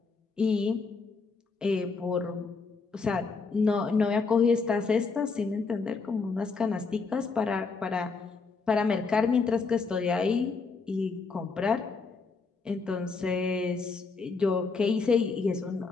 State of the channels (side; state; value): right; quieter; 4.5 dB